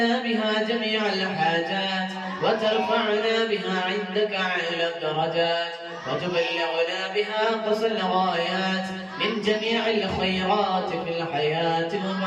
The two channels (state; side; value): identical; both; correlation 1.00